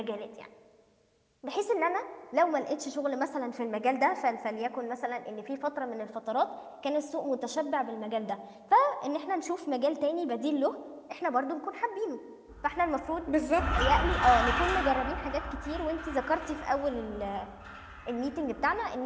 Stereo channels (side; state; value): both; identical; correlation 1.00